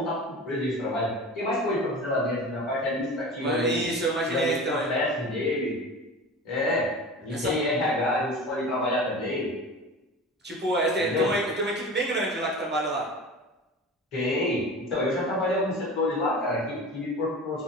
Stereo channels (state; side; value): normal; both; correlation 0.34